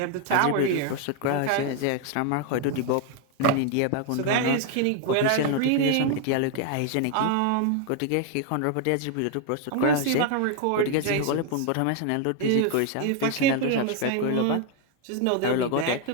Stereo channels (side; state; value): both; different; correlation 0.01